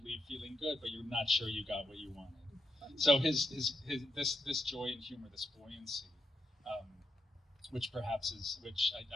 leave feeling good, but you're not sure you got what you wanted. So this joy and humor, this buoyancy, which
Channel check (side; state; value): both; normal; correlation 0.84